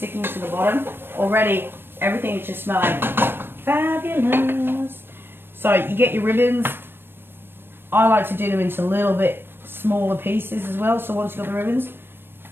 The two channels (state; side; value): late; left; 0.10 ms